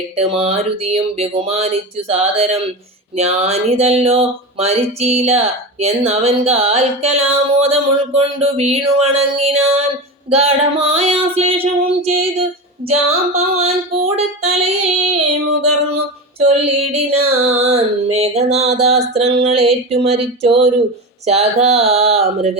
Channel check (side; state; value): both; normal; correlation 0.23